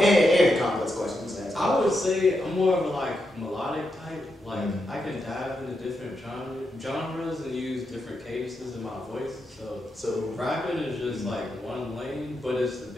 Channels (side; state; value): both; normal; correlation 0.84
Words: complex questions. I would say I'm more of a melodic type. I can dive into different genres and use different cadences in my voice. So rapping is just one lane, but it's the